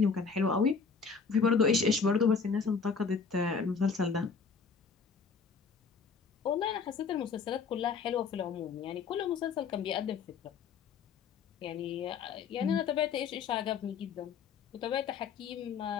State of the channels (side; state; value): right; quieter; 5.4 dB